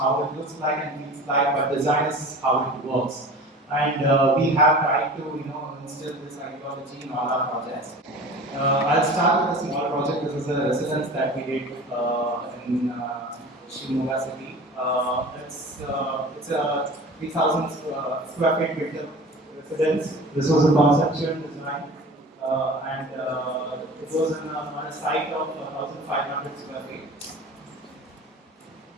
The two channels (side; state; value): both; normal; correlation 0.39